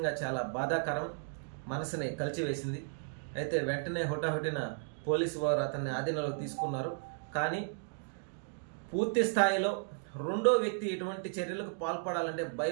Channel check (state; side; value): silent; left; digital silence